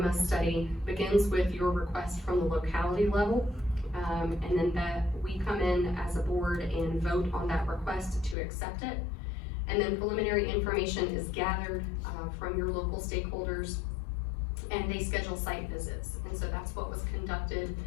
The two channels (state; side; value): drops out; right; at 8.3 s